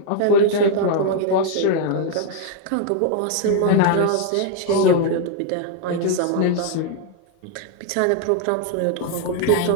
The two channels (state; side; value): different; both; correlation 0.00